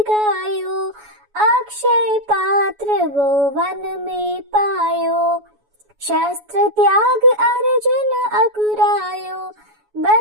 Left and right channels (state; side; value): late; left; 7.1 ms